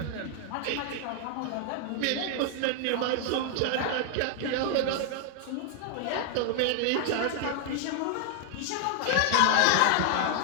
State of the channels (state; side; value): different; both; correlation 0.00